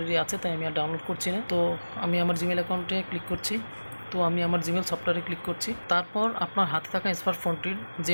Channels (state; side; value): inverted; both; correlation -1.00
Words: আছে, তাই আমি আর ডাউনলোড করছি না। তো আমি আমার জিমেল অ্যাকাউন্টে ক্লিক করছি। তো আমি আমার জিমেল সফটওয়্যারে ক্লিক করছি। তারপর আপনার হাতে থাকা স্মার্টফোনটির